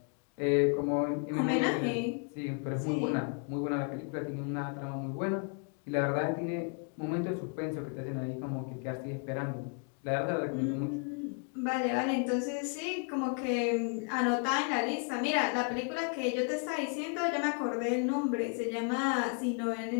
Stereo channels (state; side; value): quieter; right; 38.1 dB